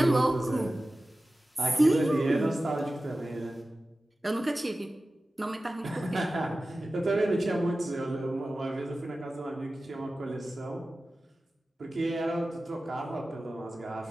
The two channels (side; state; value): both; normal; correlation 0.95